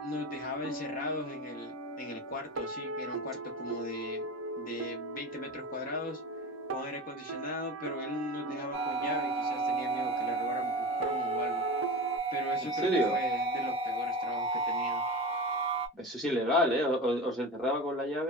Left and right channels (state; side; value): normal; both; correlation 0.27